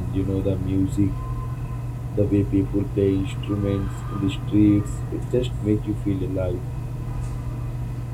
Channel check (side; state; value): both; identical; correlation 1.00